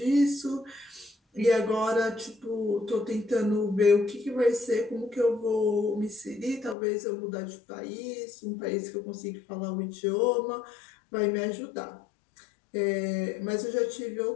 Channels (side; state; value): right; drops out; at 6.8 s